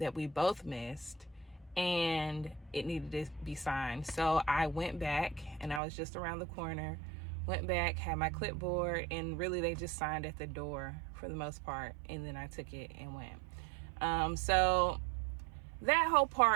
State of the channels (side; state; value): left; drops out; at 5.8 s